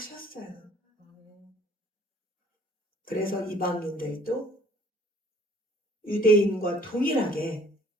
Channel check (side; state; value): both; normal; correlation 0.57